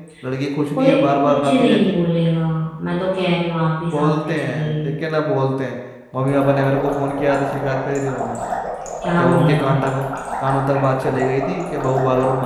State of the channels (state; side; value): identical; both; correlation 1.00